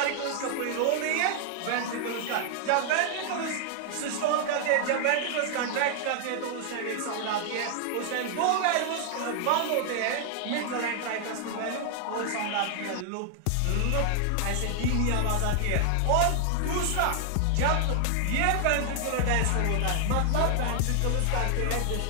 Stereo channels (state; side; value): different; both; correlation 0.00